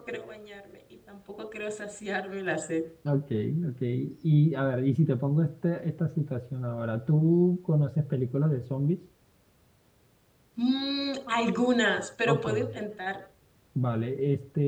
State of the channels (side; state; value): both; identical; correlation 1.00